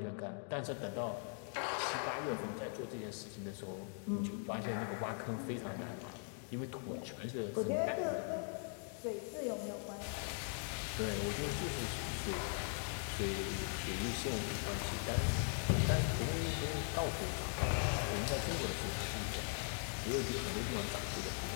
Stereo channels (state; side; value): silent; right; 51 dB below the other